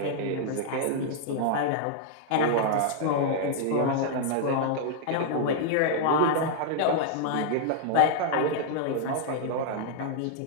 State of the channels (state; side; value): different; both; correlation -0.01